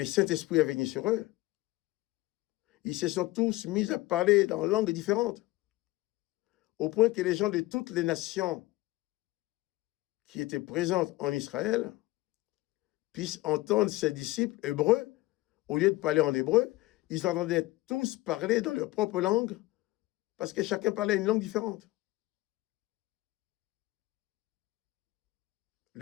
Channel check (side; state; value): right; quieter; 19.3 dB